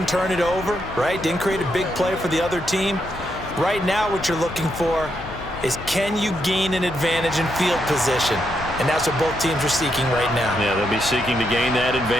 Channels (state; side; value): noise; left; hum, 14 dB below the sound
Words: turn it over, right? Didn't create a big play for the other team. Right now what you're looking for is, can you gain an advantage in field position? And that's what both teams are seeking right now. Yeah, they'll be seeking to gain that